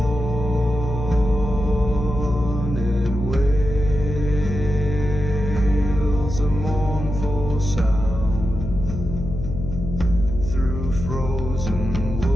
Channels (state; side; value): noise; left; hum, 6 dB below the sound